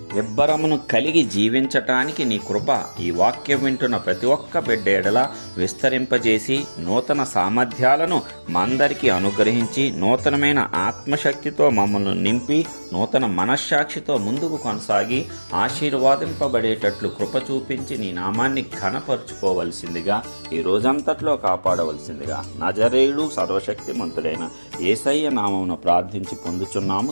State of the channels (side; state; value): both; inverted; correlation -1.00